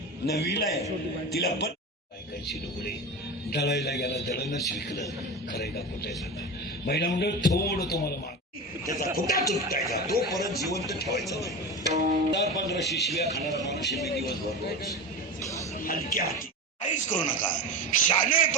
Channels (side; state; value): both; normal; correlation 0.26